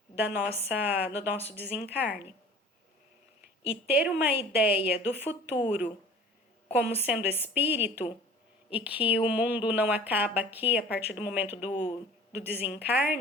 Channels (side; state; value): both; normal; correlation 0.45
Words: do nosso desencarne. E ter uma ideia do futuro como sendo espírito, e que o mundo não acaba aqui a partir do momento do